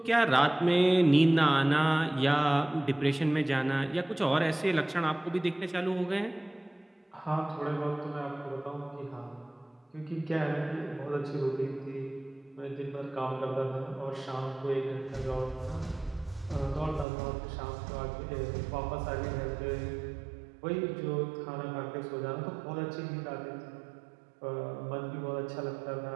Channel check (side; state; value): left; drops out; at 17.1 s